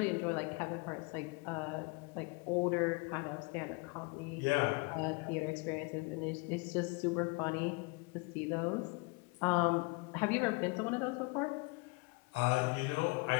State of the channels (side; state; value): right; quieter; 28.8 dB